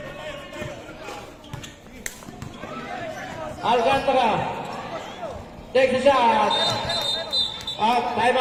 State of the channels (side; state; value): both; identical; correlation 1.00